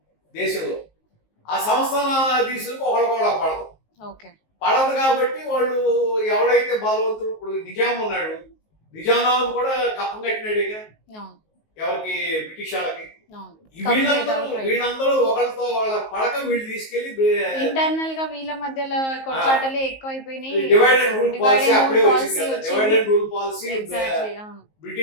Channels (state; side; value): late; right; 19 ms